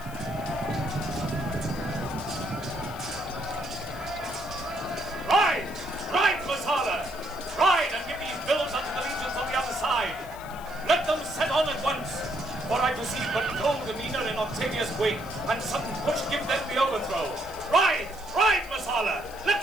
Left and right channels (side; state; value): left; noise; hiss, 20 dB below the sound